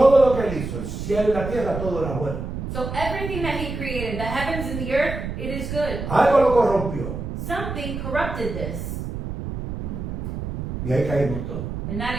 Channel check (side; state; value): right; noise; rumble, 6 dB below the sound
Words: lo que él hizo, el cielo y la tierra, todo era bueno. So everything that He created, the heavens and the earth, it is good. Algo lo corrompió Something corrupted this, y ahí caímos todos. and